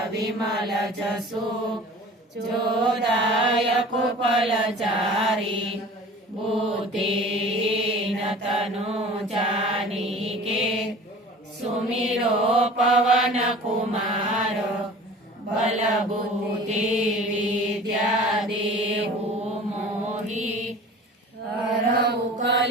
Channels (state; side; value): normal; both; correlation 0.42